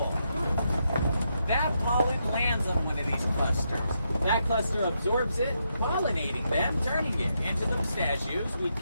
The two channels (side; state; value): both; inverted; correlation -0.81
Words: That pollen lands on one of these clusters. That cluster absorbs it, pollinating them, turning it into the pistachios we